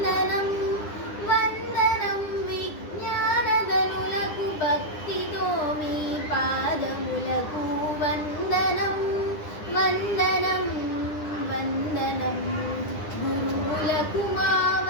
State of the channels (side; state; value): right; late; 9.9 ms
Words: వందనం విజ్ఞానధనులకు భక్తితో మీ పాదములకు వందనం వందనం వందనం గురువులకు మా